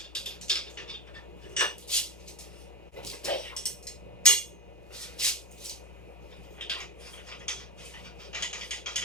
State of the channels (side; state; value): both; normal; correlation 0.17